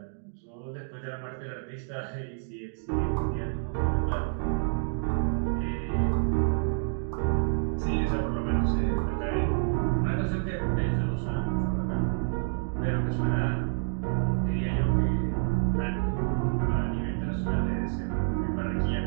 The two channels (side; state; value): left; silent; digital silence